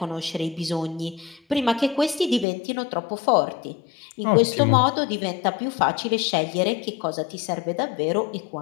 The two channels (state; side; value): drops out; right; at 2.5 s